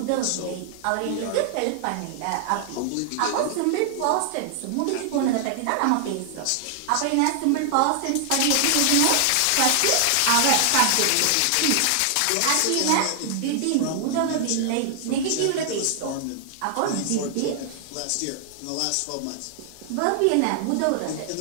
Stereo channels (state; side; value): different; both; correlation 0.00